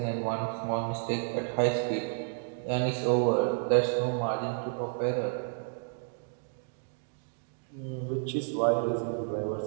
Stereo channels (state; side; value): silent; left; digital silence